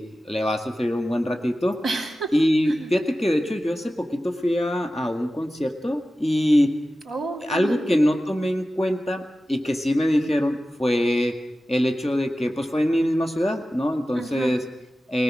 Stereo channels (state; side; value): normal; both; correlation 0.94